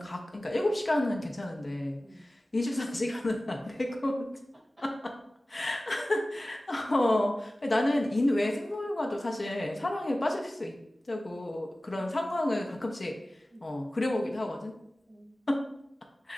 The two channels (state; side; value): normal; both; correlation 0.97